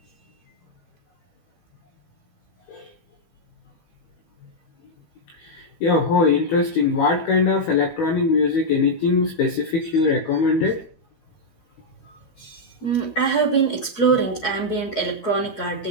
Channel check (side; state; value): right; late; 12 ms